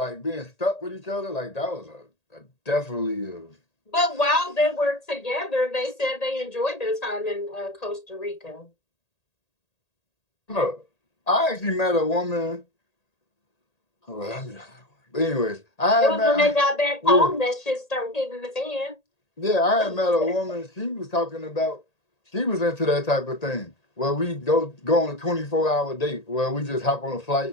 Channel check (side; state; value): right; late; 1.8 ms